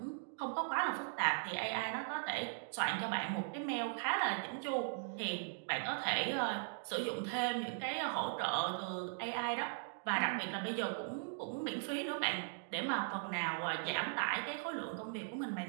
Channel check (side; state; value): left; silent; digital silence